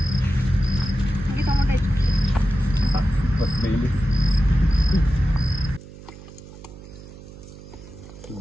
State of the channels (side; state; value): right; noise; hum, 17 dB below the sound